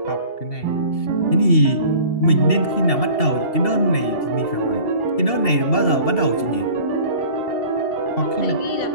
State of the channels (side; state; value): right; late; 2.7 ms